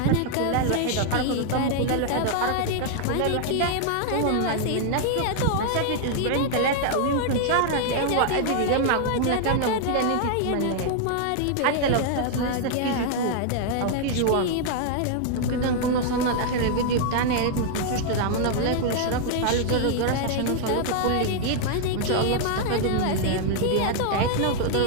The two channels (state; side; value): different; both; correlation 0.00